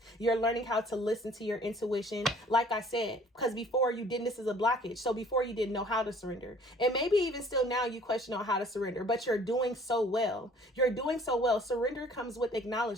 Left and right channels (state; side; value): normal; both; correlation 0.54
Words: You're learning how to listen to your intuition. Like I said, because before you didn't, this is a blockage. So before you didn't know how to surrender. And maybe even still now you question on how to surrender, but you're doing so well. You're doing so well. Surrender comes with